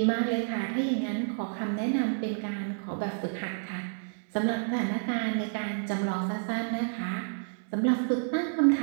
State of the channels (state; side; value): silent; left; 58 dB below the other